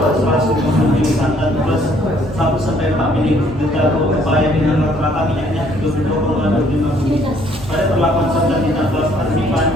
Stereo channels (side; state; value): both; normal; correlation 0.63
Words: 150 mili santan plus 1-4 mili berlaku upaya dengan rata-rata minyaknya 22,25 mili. Pada perlakuan santan ditambah